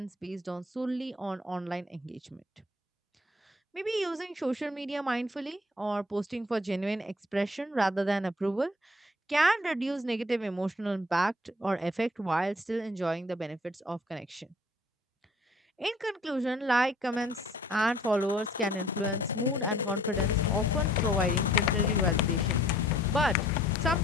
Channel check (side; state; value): both; normal; correlation 0.57